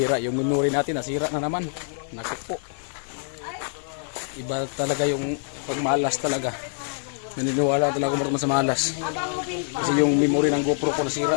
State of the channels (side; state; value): right; silent; digital silence